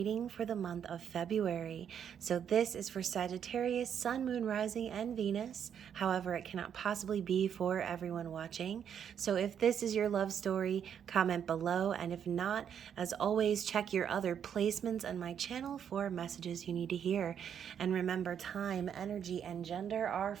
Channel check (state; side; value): quieter; left; 8.5 dB